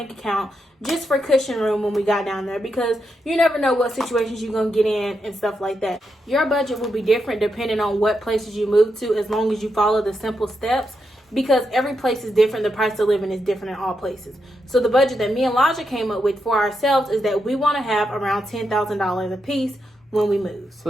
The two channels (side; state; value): both; normal; correlation 0.84